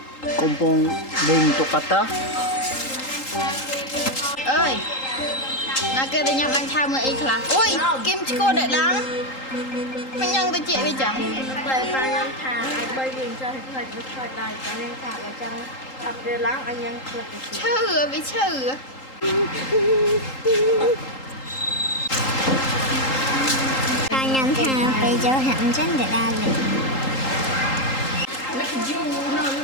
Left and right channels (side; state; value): right; late; 3.8 ms